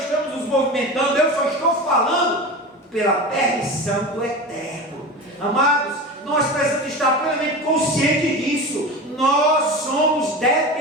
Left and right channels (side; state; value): both; normal; correlation 0.28